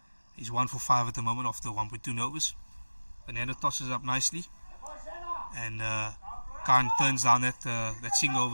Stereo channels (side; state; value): both; inverted; correlation -1.00